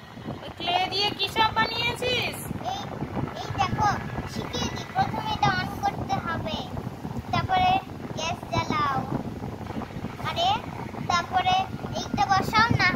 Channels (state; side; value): identical; both; correlation 1.00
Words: ক্লে দিয়ে কি সব বানিয়েছিস? এই দেখো শিখিয়ে দি। প্রথমে এটা অন করতে হবে, তারপরে গ্যাস জ্বালাও, আরে তারপরে এইটা বসাও, না